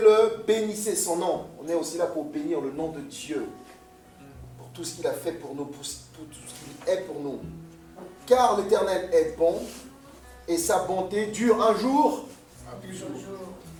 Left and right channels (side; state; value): both; identical; correlation 1.00